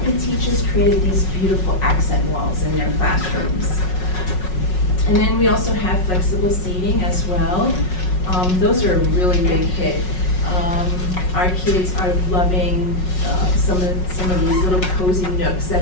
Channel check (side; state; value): right; late; 5.4 ms